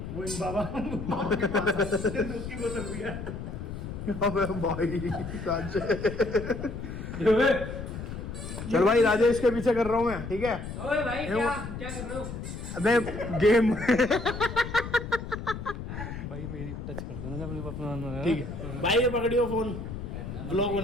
वो इन बाबा के पास उसकी बोतल भी है। अबे भाई चल भाई, राजेश के पीछे कर रहा हूँ मैं। ठीक है ओए भाई क्या कर रहे हो? अबे गेम भाई मेरी टच कर देना जब अपना। ठीक है भाई, ये पकड़ियो फोन, ब्लॉग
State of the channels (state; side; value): noise; left; rumble, 8 dB below the sound